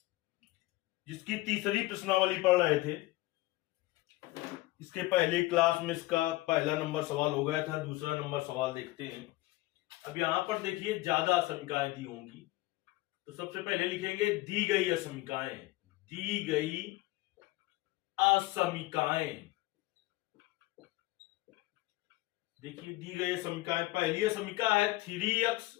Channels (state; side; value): quieter; right; 19.6 dB